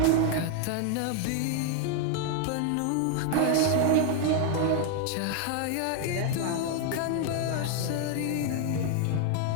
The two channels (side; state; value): both; different; correlation 0.01